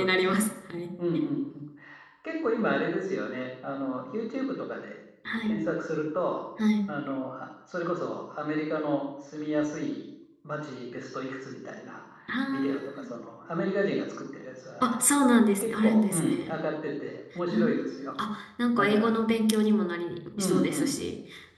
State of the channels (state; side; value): identical; both; correlation 1.00